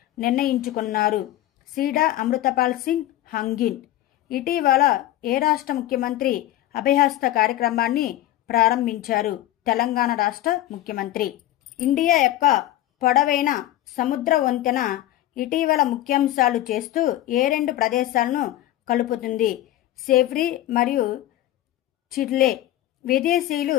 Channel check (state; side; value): quieter; right; 14.2 dB